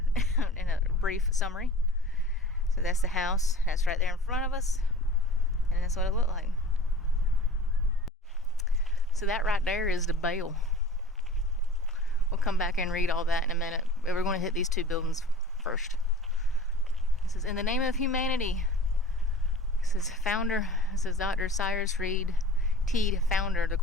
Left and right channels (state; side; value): normal; both; correlation 0.43